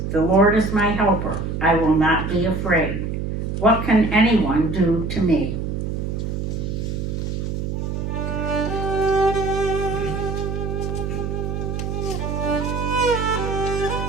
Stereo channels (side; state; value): right; noise; hum, 3 dB below the sound